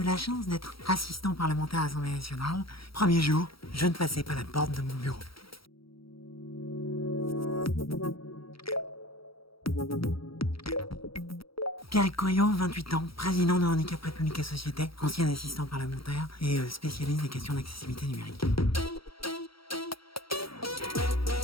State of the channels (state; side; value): late; right; 0.75 ms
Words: la chance d'être assistant parlementaire à l'Assemblée nationale. Premier jour, je ne passais pas la porte de mon bureau. Pierre Coyot, 28 ans, président de Handicap République et Société, ancien assistant parlementaire et spécialiste des questions d'accessibilité numérique.